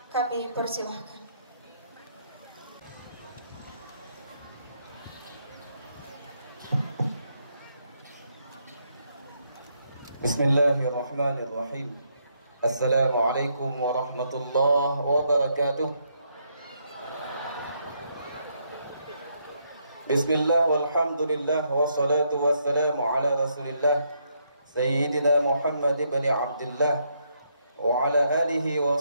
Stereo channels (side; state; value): both; inverted; correlation -0.75